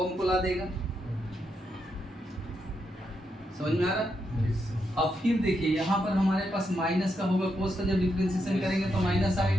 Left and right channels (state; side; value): normal; both; correlation 0.82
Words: को ला देगा। समझ में आ रहा। अब फिर देखिए यहाँ पर हमारे पास माइनस का होगा, कोस का जब डिफरेंशिएशन करेंगे तो माइनस